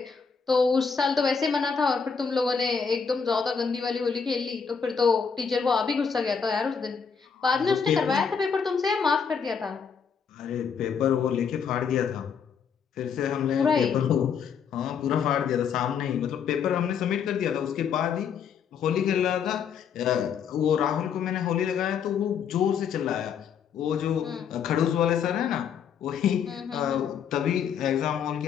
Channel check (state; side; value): quieter; right; 6.7 dB